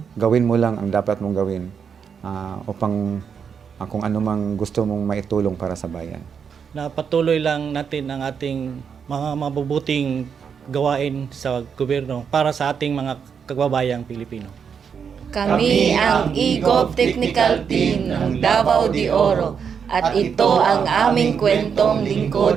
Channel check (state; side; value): quieter; left; 6.9 dB